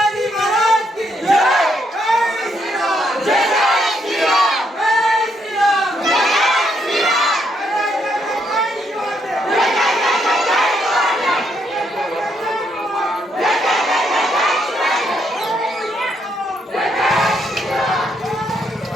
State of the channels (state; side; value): normal; both; correlation 0.75